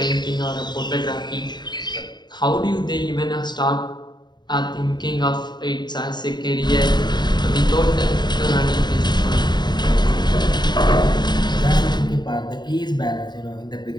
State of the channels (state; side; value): late; right; 0.21 ms